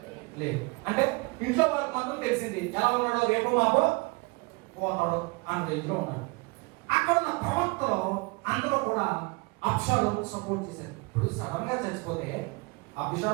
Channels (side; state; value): left; quieter; 29.6 dB